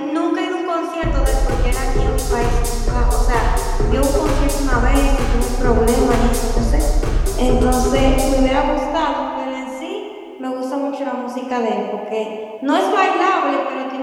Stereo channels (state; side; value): identical; both; correlation 1.00